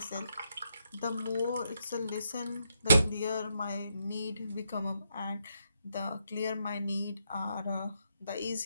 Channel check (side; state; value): both; inverted; correlation -0.79